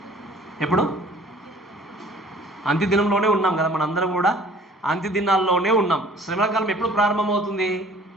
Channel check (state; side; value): normal; both; correlation 0.52